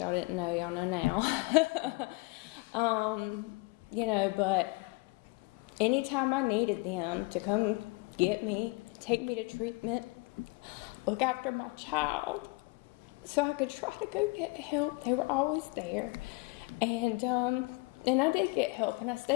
didn't know. Y'all know now. You know, but anytime I needed them to come get me, take me to treatment, look after my child, so I could try to go get help, they were always there. And I did get help, and I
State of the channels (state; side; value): quieter; right; 26.8 dB